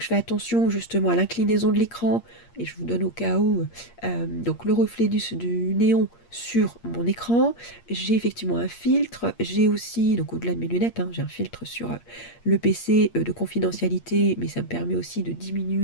fais attention justement à l'inclinaison de l'écran, et je vous donne au cas où, donc le reflet du néon sur mon écran. J'ai effectivement un filtre, j'ai aussi, donc au-delà de mes lunettes, hein, j'ai un filtre sur le PC de confidentialité, mais ça me permet aussi de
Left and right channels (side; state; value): right; late; 8.6 ms